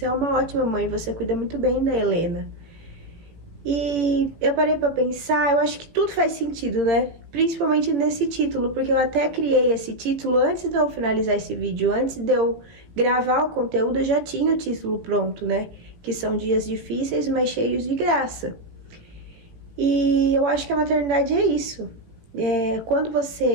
é uma ótima mãe, você cuida muito bem da Helena. E eu parei pra pensar, eu acho que tudo faz sentido, né? Principalmente nesse título, porque eu até criei esse título antes de eu finalizar esse vídeo. Antes de eu gravar o conteúdo, eu já tinha o título pronto, né? Que são dias difíceis, mas cheios de graça. E eu acho que a maternidade é isso. Quando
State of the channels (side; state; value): left; late; 17 ms